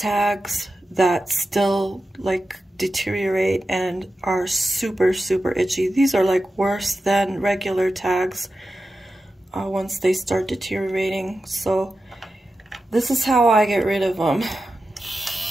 that still like deteriorate and are super itchy. These are like worse than regular tags once they start deteriorating. So this is how I get rid of them.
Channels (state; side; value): normal; both; correlation 0.92